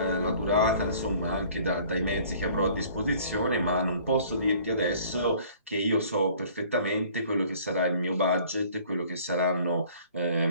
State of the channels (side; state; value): both; inverted; correlation -0.53